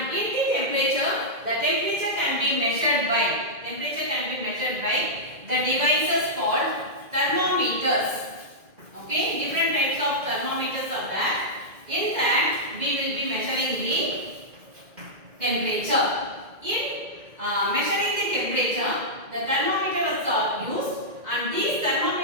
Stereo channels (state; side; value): late; left; 2.1 ms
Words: in the temperature can be measured by the devices called thermometers. Okay, different types of thermometers are there. In that, we will be measuring the temperature. In measuring the temperature, the thermometers are used, and these